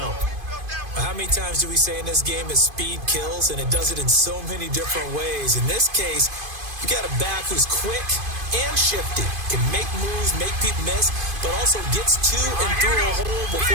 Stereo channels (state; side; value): late; left; 2.5 ms